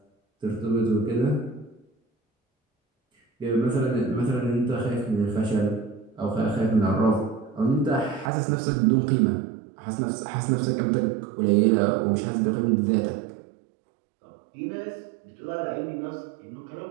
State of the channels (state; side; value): drops out; left; at 8.3 s